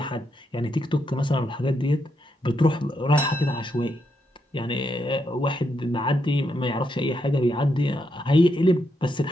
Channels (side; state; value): both; normal; correlation 0.80